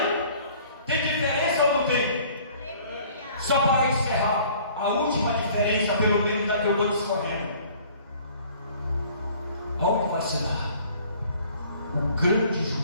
Tem diferença ou não tem? Só para encerrar, a última diferença, pelo menos da que eu vou discorrendo. Onde vai se dar o grande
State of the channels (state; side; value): inverted; both; correlation -0.53